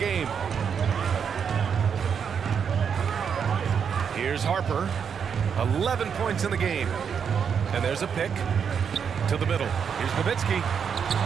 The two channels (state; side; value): quieter; left; 7.1 dB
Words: Here's Harper. 11 points in the game. And there's a pick to the middle. Here's Nowitzki.